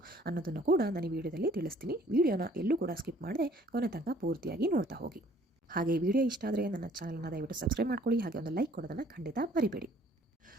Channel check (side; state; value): both; normal; correlation 0.58